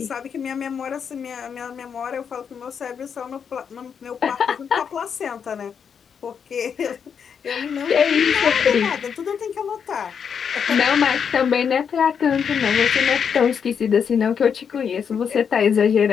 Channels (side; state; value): right; quieter; 7.1 dB